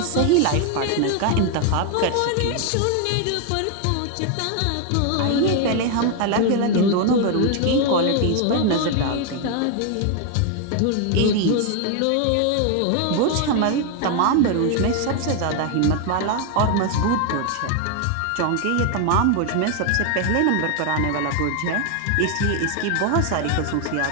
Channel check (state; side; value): different; both; correlation 0.01